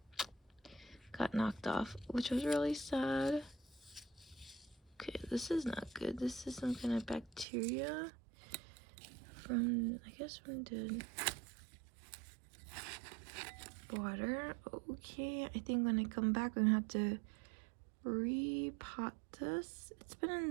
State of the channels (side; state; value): left; drops out; at 7.5 s